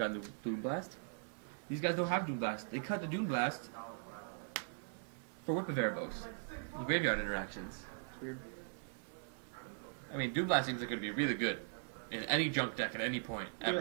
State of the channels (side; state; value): left; silent; digital silence